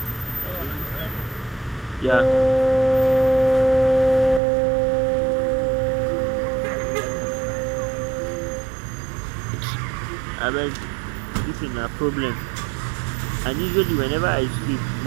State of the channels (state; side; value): drops out; left; at 4.4 s